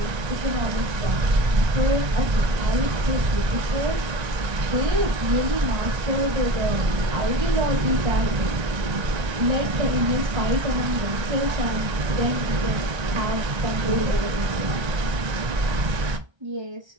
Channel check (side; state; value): left; late; 1.3 ms